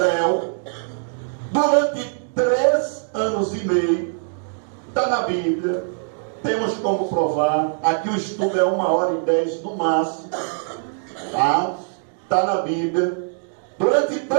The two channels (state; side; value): silent; left; digital silence